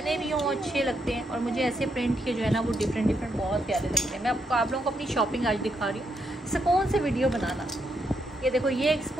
भी हों अच्छे लगते हैं, और मुझे ऐसे प्रिंट के जो है ना वो डिफरेंट बहुत प्यारे लगते हैं। मैं आप लोगों को अपनी शॉपिंग आज दिखा रही हूँ, सुकून से वीडियो बनाना। ये देखो, ये एक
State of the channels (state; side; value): normal; both; correlation 0.79